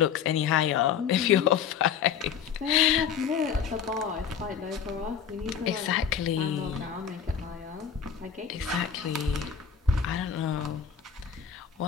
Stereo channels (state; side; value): quieter; right; 7.6 dB